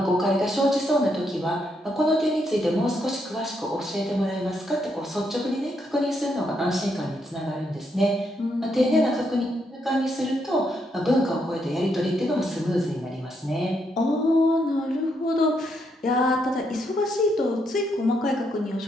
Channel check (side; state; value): both; normal; correlation 0.77